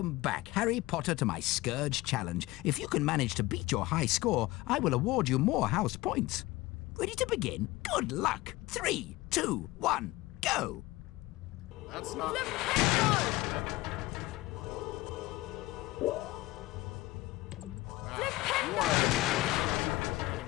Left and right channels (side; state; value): right; quieter; 19.4 dB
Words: back, Harry Potter, to my Scourge Challenge. If you can manage to beat your high score, I will award you more house points. Ready to begin? Good luck. 3, 2, 1, go! That's not...